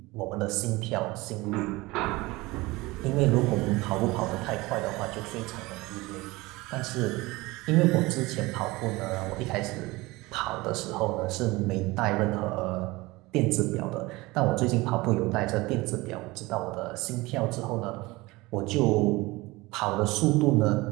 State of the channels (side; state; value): left; quieter; 21.5 dB